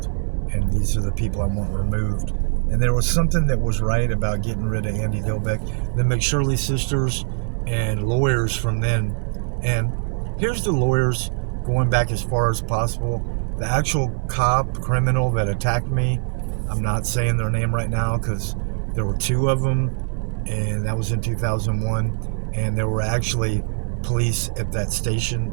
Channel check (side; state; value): left; silent; digital silence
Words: and these are the people I want removed. And there was something that was right about getting rid of Andy Dilbeck, the McShirley sisters, and lawyers from then. And here's the lawyers going back as far as possible. The actual criminal that attacked me, I'm not saying their name right now because there were two of them, and that was in 2001. And there were actually police at that station